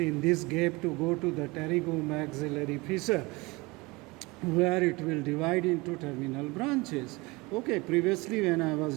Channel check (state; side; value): quieter; left; 24.2 dB